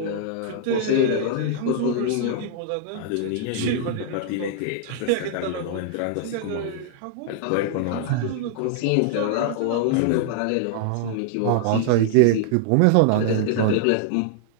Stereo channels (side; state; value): both; different; correlation -0.01